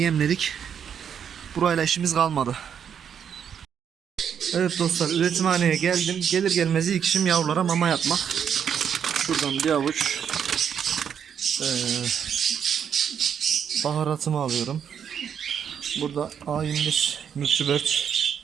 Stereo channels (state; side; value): quieter; left; 8.0 dB